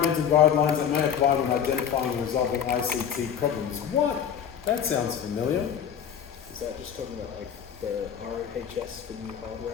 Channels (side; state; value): right; quieter; 8.4 dB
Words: guidelines that may apply when identifying and resolving ICT problems. What? That sounds familiar. Is that just talking about like the ROHS for new hardware